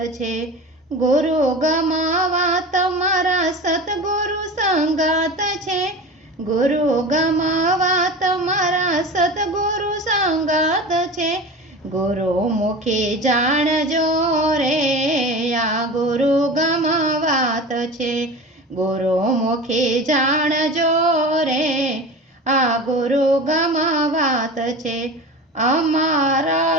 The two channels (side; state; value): both; normal; correlation 0.32